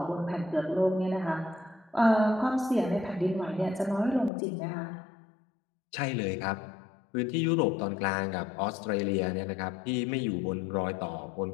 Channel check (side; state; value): right; drops out; at 4.3 s